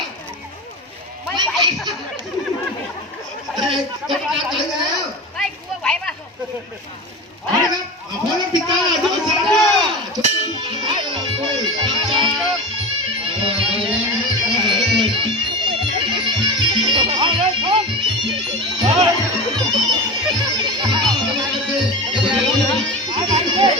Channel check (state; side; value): normal; both; correlation 0.27